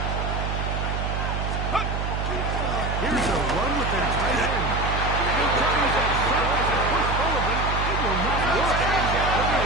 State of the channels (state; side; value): noise; right; hum, 2 dB below the sound